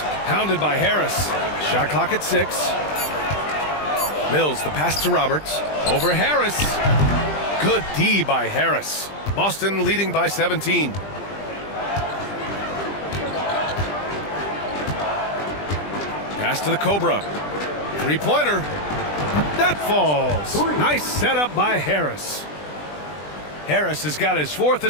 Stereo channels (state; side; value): late; right; 20 ms